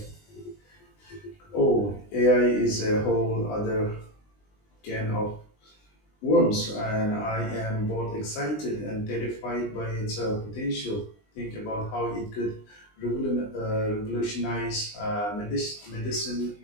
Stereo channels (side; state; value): right; late; 20 ms